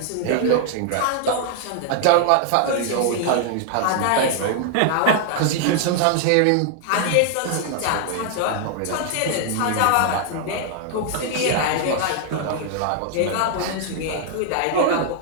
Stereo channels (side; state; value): both; different; correlation 0.00